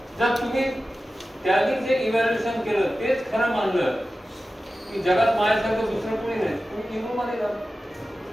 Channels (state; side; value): normal; both; correlation 0.94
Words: जर तुम्ही त्यांनी जे इव्हॅल्युएशन केलं तेच खरं मानलं की जगात माझ्यासारखं दुसरं कोणी नाही, तुम्ही इगो मध्ये जा.